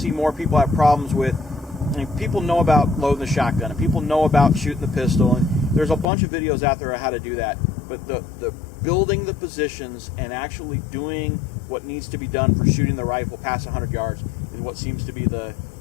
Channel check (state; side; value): drops out; right; at 6.1 s